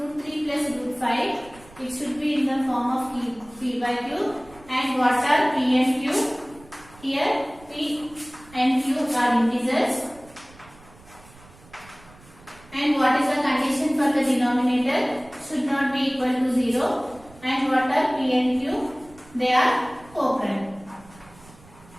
3 plus root 5, it should be in the form of p by q. And what are p and q? Here, p and q are integers. And what is the condition for the denominator? Should not be equal to 0. And what are p and q? They are co-prime.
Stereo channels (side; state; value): right; noise; rumble, 24 dB below the sound